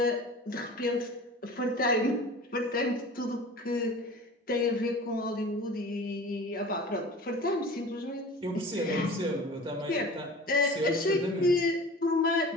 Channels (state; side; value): normal; both; correlation 0.39